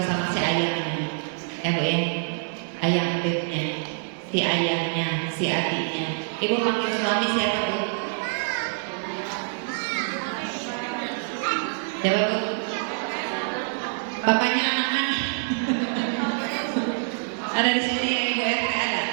sama si ayahnya, ya Bu ya, ayah bebnya, si ayahnya, si adiknya. Ibu panggil suami siapa Bu? Jawab Bu. Bapaknya anak-anak. Ada di sini yang Ibu RT ada.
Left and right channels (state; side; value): silent; left; 61 dB below the other